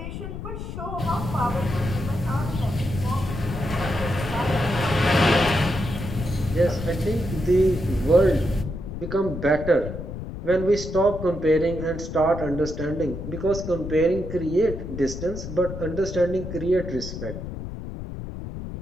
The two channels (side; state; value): left; noise; rumble, 8 dB below the sound